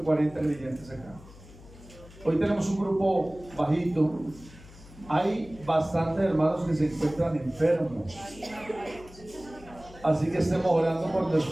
creyentes acá. Hoy tenemos un grupo bajito. Hay bastantes hermanos que se encuentran enfermos. Así que estemos orando por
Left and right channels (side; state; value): left; noise; hum, 20 dB below the sound